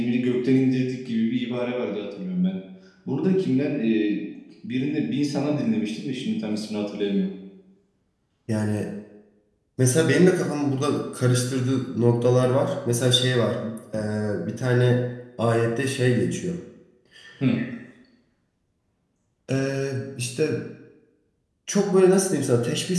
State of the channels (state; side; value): identical; both; correlation 1.00